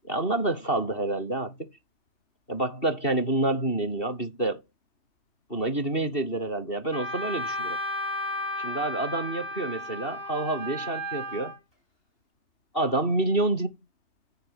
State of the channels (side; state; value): right; late; 2.7 ms